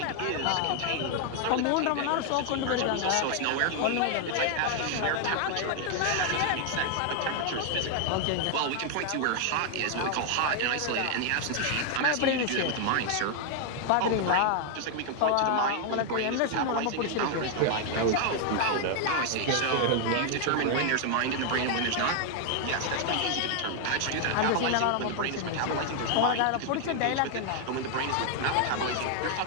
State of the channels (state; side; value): different; both; correlation 0.00